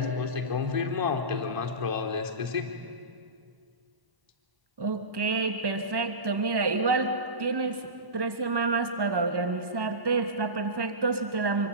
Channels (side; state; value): left; late; 1.2 ms